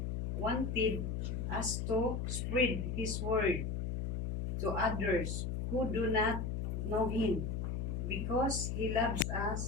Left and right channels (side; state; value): left; noise; hum, 1 dB below the sound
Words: wanted us to spread His word to others who do not know Him, because He loves